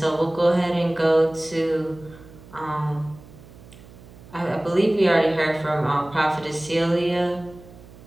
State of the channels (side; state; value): right; noise; hum, 21 dB below the sound